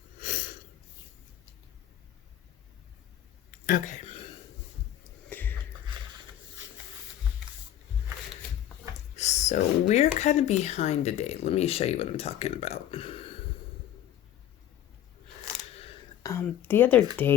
Okay. So we're kind of behind today. Let me show you what I'm talking about. The other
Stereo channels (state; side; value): quieter; right; 11.6 dB